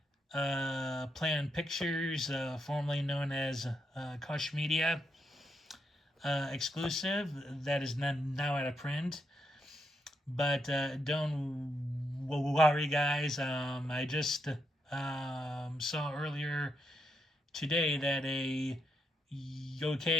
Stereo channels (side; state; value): both; normal; correlation 0.80